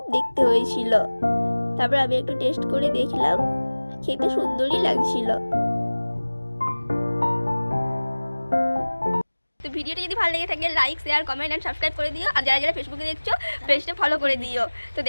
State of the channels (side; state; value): both; inverted; correlation -1.00